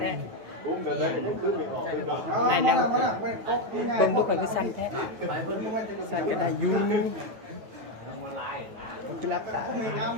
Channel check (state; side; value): late; left; 9.0 ms